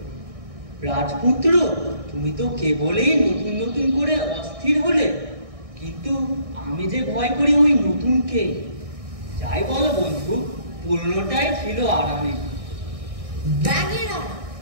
রাজপুত্র, তুমি তো কেবলই নতুন নতুন করে অস্থির হলে, কিন্তু আমি যে ভয় করি ওই নতুনকে। যাই বলো বন্ধু, পুরনোটাই ছিল আরামে। ব্যাঙের আরাম,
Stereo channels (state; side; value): late; left; 1.6 ms